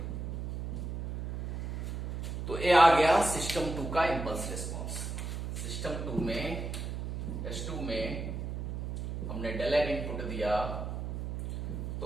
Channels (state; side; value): noise; right; hum, 5 dB below the sound